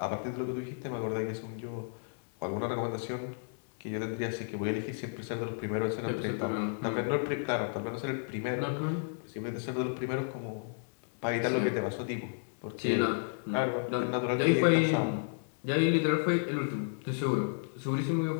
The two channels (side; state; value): right; silent; digital silence